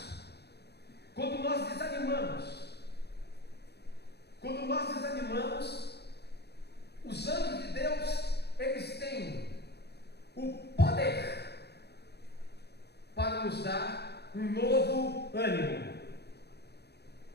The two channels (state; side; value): late; right; 0.48 ms